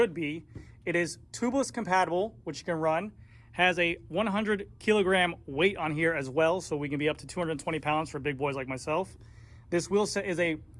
be. It is tubeless compatible, which you can run. Has a 100 kilogram weight on here as well, so we can be up to 220 pounds for big boys like myself. This wheel set is a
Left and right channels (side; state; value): both; identical; correlation 1.00